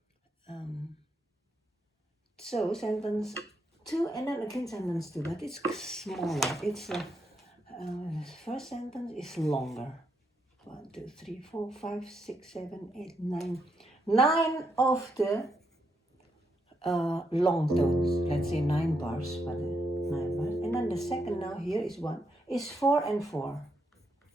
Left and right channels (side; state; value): both; normal; correlation 0.79